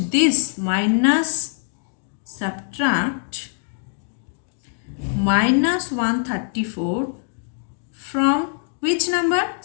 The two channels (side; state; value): right; silent; digital silence